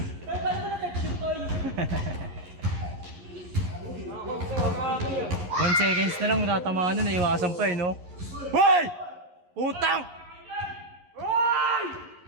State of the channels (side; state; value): left; late; 11 ms